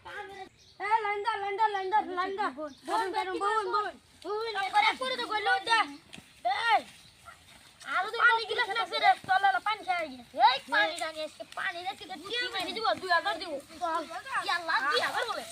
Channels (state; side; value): identical; both; correlation 1.00